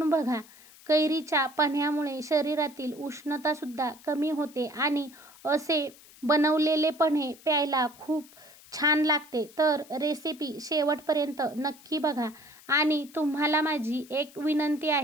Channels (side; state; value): left; noise; hiss, 23 dB below the sound